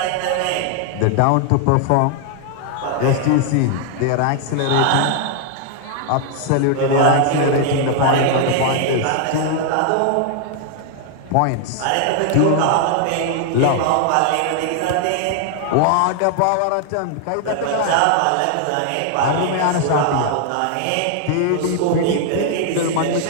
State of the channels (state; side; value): different; both; correlation 0.00